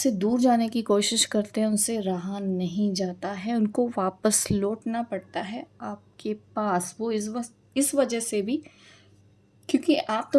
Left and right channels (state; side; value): identical; both; correlation 1.00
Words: दूर जाने की कोशिश करते हैं, उनसे रहा नहीं जाता है, उनको वापस लौटना पड़ता है आपके पास। वो इस वजह से भी, क्योंकि आप